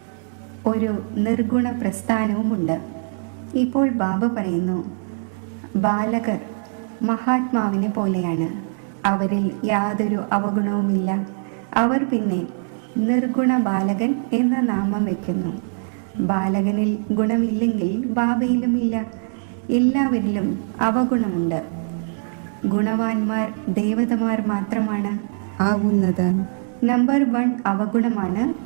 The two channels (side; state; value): left; silent; 63 dB below the other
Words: ഒരു നിർഗുണ പ്രസ്ഥാനവുമുണ്ട്. ഇപ്പോൾ ബാബ പറയുന്നു ബാലകർ മഹാത്മാവിനെ പോലെയാണ്. അവരിൽ യാതൊരു അവഗുണവുമില്ല. അവർ പിന്നെ നിർഗുണ ബാലകൻ എന്ന നാമം വയ്ക്കുന്നു. ബാലകനിൽ ഗുണമില്ലെങ്കിൽ ബാബയിലുമില്ല. എല്ലാവരിലും അവഗുണമുണ്ട്. ഗുണവാന്മാർ ദേവതമാർ മാത്രമാണ് ആവുന്നത്. നമ്പർ 1 അവഗുണമാണ്